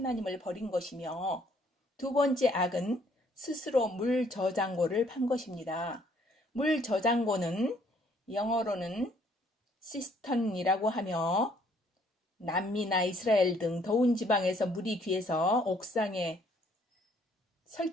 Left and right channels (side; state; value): both; normal; correlation 0.64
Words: 버린 것이며 두 번째 악은 스스로 물 저장고를 판 것입니다. 물 저장고는 영어로는 시스턴이라고 하며 남미나 이스라엘 등 더운 지방에서 물이 귀해서 옥상에